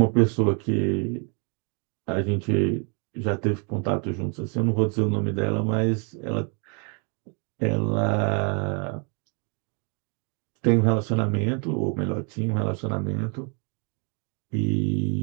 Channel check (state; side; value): quieter; left; 36.3 dB